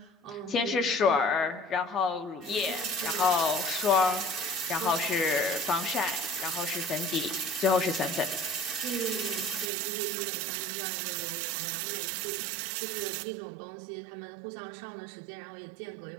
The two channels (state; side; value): drops out; left; at 9.7 s